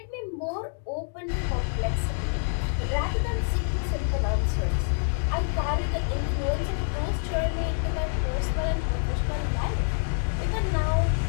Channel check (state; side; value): silent; right; digital silence